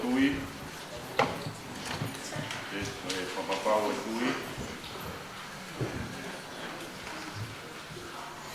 Papapau e tui.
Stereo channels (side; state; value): both; identical; correlation 1.00